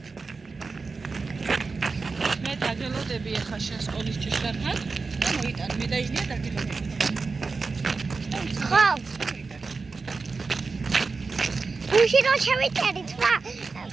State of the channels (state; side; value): quieter; left; 4.3 dB